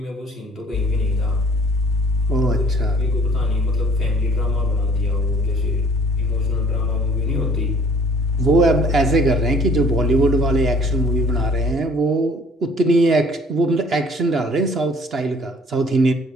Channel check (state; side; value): normal; both; correlation 0.55